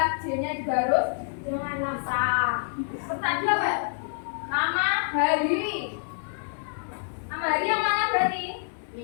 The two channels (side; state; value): right; silent; digital silence